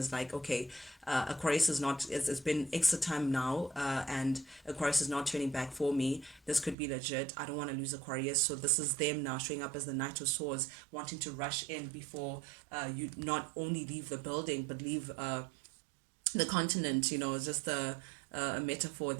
like, okay, Aquarius is not, it's been extra time now, and Aquarius is not turning back for me. This could be legit. I don't want to lose Aquarius. So this is them now showing up as the Knight of Swords, wanting to rush in before you not only leave the building, but leave the continent. It's just a metaphor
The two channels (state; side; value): drops out; left; at 6.8 s